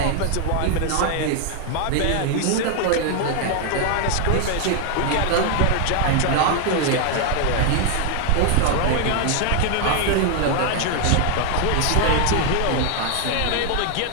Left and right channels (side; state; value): both; different; correlation 0.00